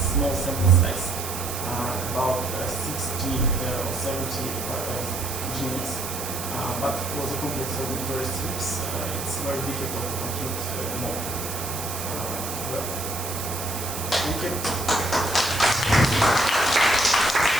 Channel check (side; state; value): right; noise; hiss, 6 dB below the sound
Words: sample size, about 60 or 70 genomes. But for the complex auditory strips, it's very difficult to compute more. Well, thank you.